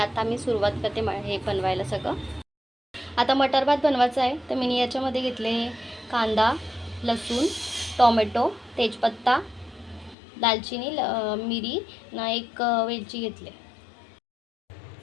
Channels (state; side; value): drops out; right; at 10.2 s